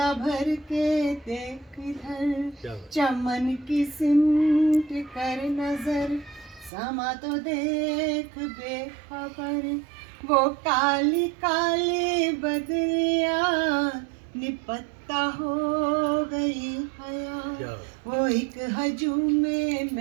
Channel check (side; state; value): left; drops out; at 6.7 s